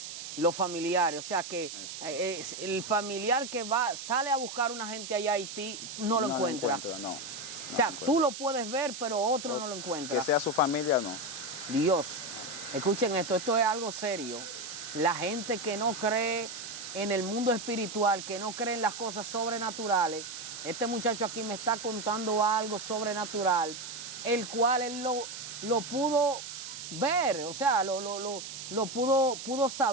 los familiares. O sea, que el familiar que sale a buscar una gente allá a Haití no lo encuentra. No, O sea, tú lo puedes ver, pero otro no lo encuentra. Que sea su familia, no. Dios, escuchen esto es algo serio. La gente que no cree en el mundo espiritual, que no cree en las cosas sobrenaturales, este muchacho aquí me está contando algo sobrenatural, el cual él lo pudo ver, o sea, lo pudo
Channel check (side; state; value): right; noise; hiss, 9 dB below the sound